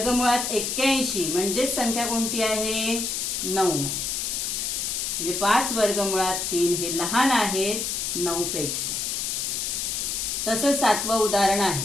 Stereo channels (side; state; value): left; noise; hiss, 1 dB below the sound